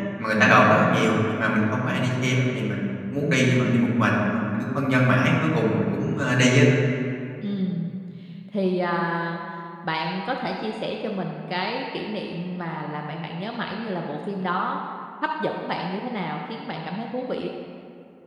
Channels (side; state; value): both; identical; correlation 1.00